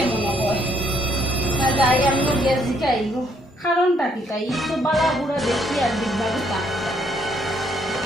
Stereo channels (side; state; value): both; normal; correlation 0.70